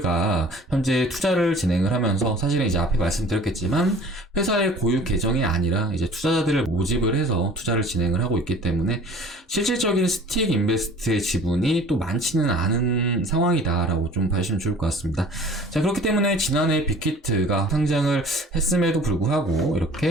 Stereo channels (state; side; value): normal; both; correlation 0.47